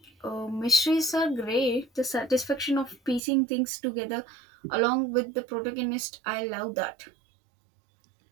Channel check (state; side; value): drops out; left; at 3.2 s